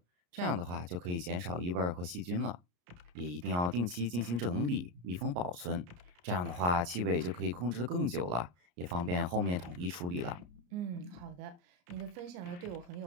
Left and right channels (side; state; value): left; late; 34 ms